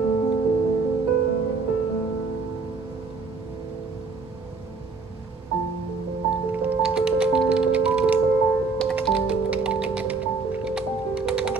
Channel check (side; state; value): left; quieter; 4.4 dB